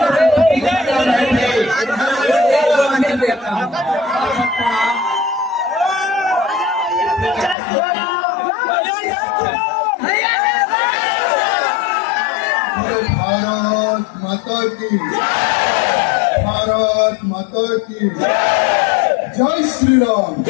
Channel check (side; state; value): right; drops out; at 7.6 s